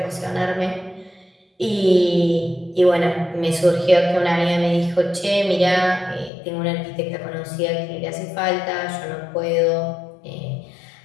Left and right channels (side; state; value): right; drops out; at 6.3 s